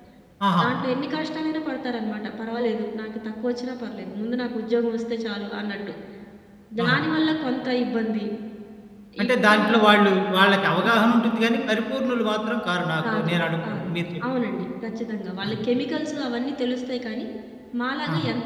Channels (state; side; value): identical; both; correlation 1.00